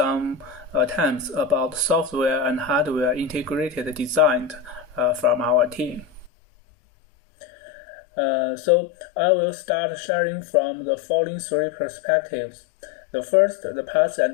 terms about software and hardware integrated design from our team. So I will start sharing from the following three perspectives. The first, the past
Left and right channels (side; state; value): right; drops out; at 6.3 s